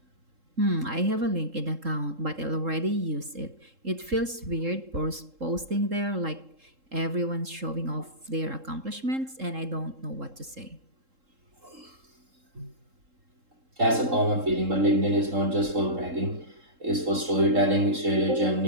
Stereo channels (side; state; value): left; late; 3.7 ms